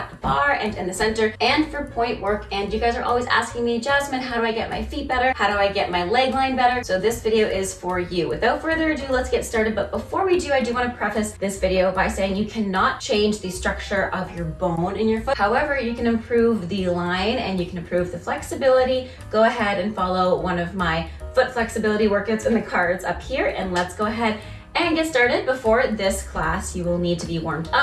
the bar and in the center and for point work. And you guys are always asking me, Jasmine, how do I get my feet better? How do I get my leg line better? So this video is for you. Without further ado, let's get started. But before we do, I do want to preface this video by saying you cannot change the structure of your bone in your foot. However, you can improve the line and you can improve the flexibility. Go ahead and follow one of my foot flexibility workouts in the cards up here, and let's go ahead and get started. Before this class, you will need to be warmed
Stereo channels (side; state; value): both; identical; correlation 1.00